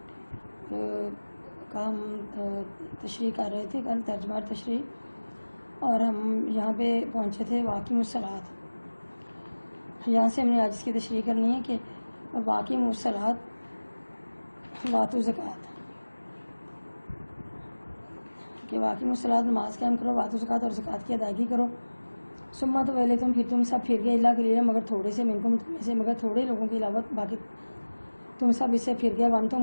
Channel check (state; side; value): inverted; both; correlation -1.00